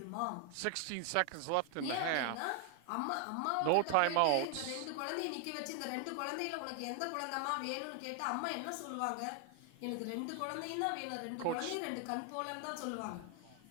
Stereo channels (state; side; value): different; both; correlation 0.00